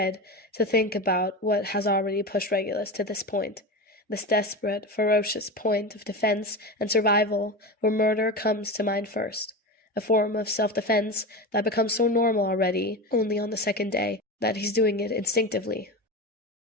to think about what has already pushed Regulus to this point, this desperate, ferocious point of defense and survival where murder comes to mind first. A form of self-defense that becomes so normal already, only on the second day, that he's doing it instinctively.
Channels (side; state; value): both; normal; correlation 0.24